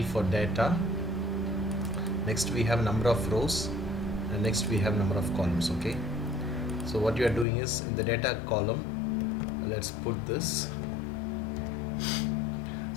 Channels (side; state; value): right; drops out; at 7.5 s